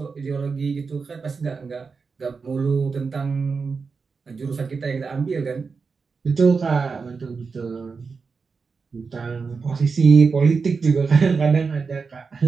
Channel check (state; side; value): quieter; left; 4.9 dB